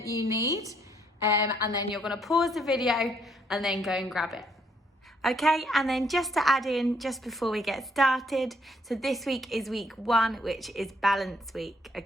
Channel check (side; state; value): both; normal; correlation 0.69